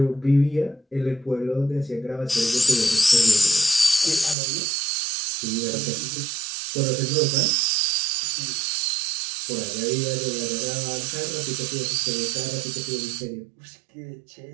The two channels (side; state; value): left; drops out; at 4.4 s